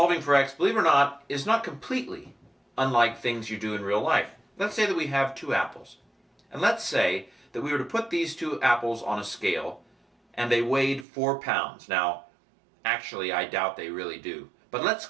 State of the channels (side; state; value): left; drops out; at 11.1 s